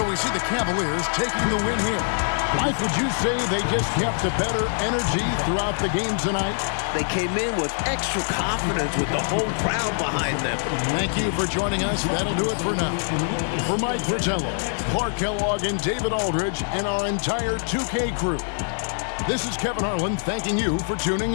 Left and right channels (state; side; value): silent; right; digital silence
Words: we see the Cavaliers taking the win here. Mike, would you say they just kept a better energy throughout the game tonight? They came in with extra confidence with the whole crowd behind them. Thank you for joining us. That'll do it for now. For Mike Fratello, Clark Kellogg, and David Aldridge, and our entire 2K crew, this is Kevin Harlan thanking you for tuning